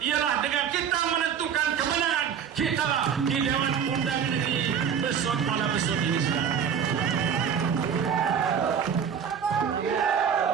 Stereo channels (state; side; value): quieter; left; 7.7 dB